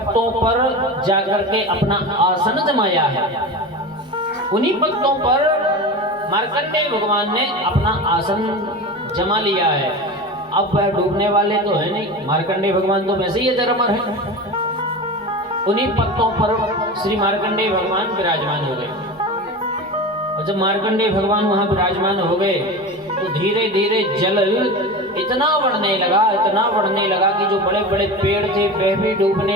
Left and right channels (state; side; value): normal; both; correlation 0.28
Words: पर जाकर के अपना आसन जमाया है। उन्हीं पत्तों पर मार्कंडेय भगवान ने अपना आसन जमा लिया है। अब वह डूबने वाले तो है नहीं, मार्कंडेय भगवान तो वैसे ही अजरमर है। उन्हीं पत्तों पर श्री मार्कंडेय भगवान विराजमान हो गए। और जब मार्कंडेय भगवान वहां विराजमान हो गए तो धीरे धीरे जल इतना बढ़ने लगा कि जो बड़े बड़े पेड़ थे वह भी